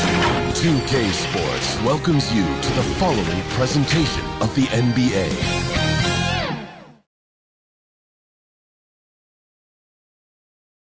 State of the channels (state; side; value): identical; both; correlation 1.00